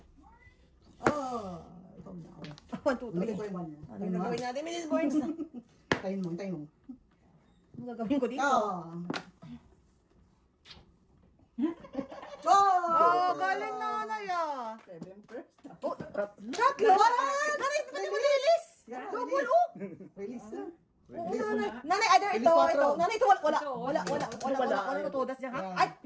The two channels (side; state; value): both; identical; correlation 1.00